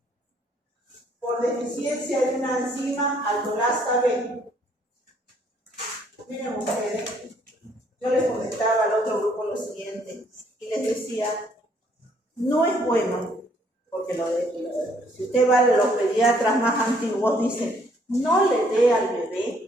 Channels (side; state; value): both; normal; correlation 0.65